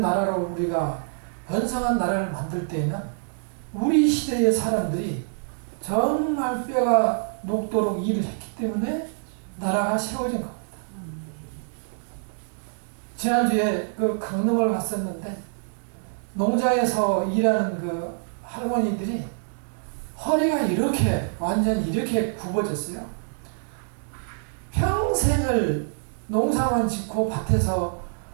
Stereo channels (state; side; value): silent; left; digital silence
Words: 나라로 우리가 번성한 나라를 만들 때에는 우리 시대의 사람들이 정말 뼈가 녹도록 일을 했기 때문에 나라가 세워진 겁니다. 지난주에 그 강릉을 갔었는데 농장에서 일하는 그 할머니들이 허리가 완전 이렇게 굽어졌어요. 평생을 농사만 짓고 밭에서